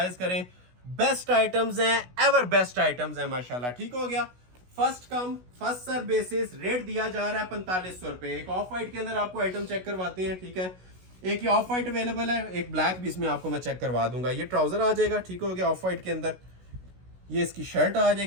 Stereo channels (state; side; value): late; left; 16 ms